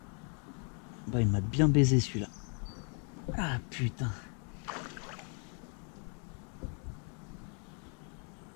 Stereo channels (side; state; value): right; quieter; 39.5 dB